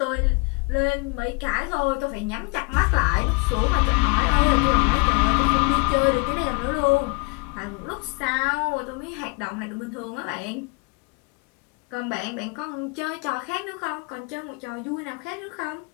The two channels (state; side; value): quieter; right; 30.9 dB